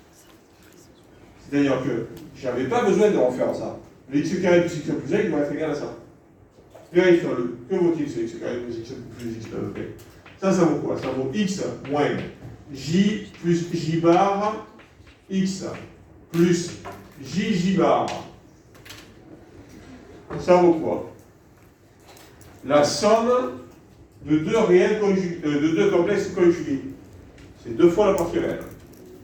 C'est-à-dire que je n'avais pas besoin de refaire ça. Le x carré plus x plus 1, il va être égal à ça. Vérifions-le. Que vaut-il ce x carré plus x plus x plus 1? Ça vaut quoi? Ça vaut x moins j plus j bar x plus j bar. Ça vaut quoi? La somme de deux réels conjugués, de deux complexes conjugués. C'est 2 fois la partie réelle.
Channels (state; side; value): identical; both; correlation 1.00